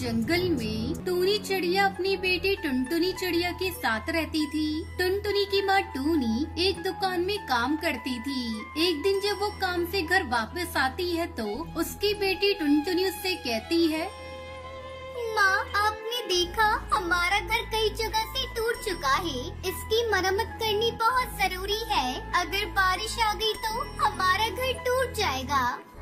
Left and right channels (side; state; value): both; identical; correlation 1.00